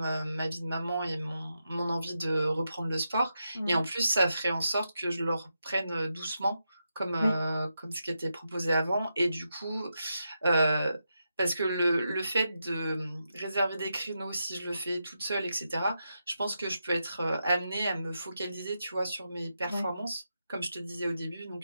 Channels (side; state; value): both; inverted; correlation -0.86